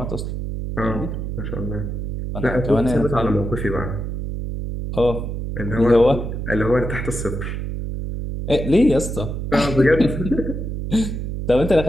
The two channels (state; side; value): noise; right; hum, 4 dB below the sound